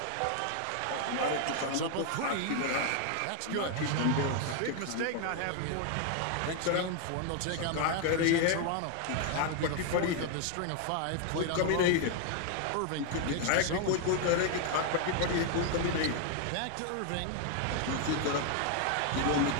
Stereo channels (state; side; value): different; both; correlation 0.01